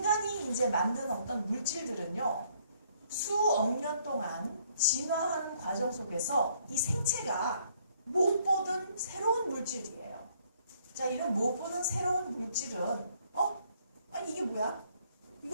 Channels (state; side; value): inverted; both; correlation -0.66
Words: 이제 만든 어떤 물질들은요, 수억 년 동안 진화하는 과정 속에서 이 생체가 못 보던 새로운 물질이에요. 자, 이런 못 보던 새로운 물질은 아니 이게 뭐야?